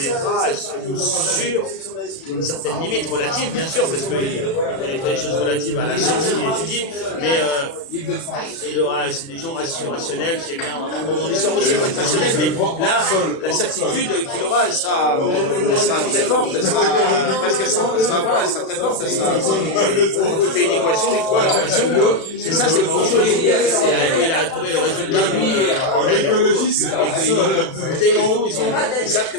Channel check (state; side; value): late; right; 36 ms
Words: sur une certaine limite relative, bien sûr, parce qu'il connaîtra des choses relatives à la science qu'il étudie, mais c'est des gens rationnels qui aiment bien. L'histoire aussi peut être rationnelle, mais là, la certitude qu'il aura, elle sera très forte, elle sera presque elle sera très forte, quand il fait une équation, il trouve l'équation. C'est ça, c'est pas autre chose. Il a trouvé le résultat ils savent